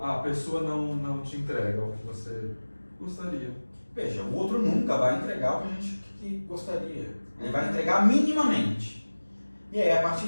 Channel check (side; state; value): both; inverted; correlation -1.00